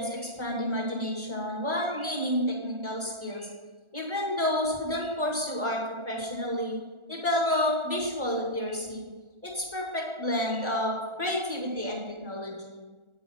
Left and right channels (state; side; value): late; left; 1.4 ms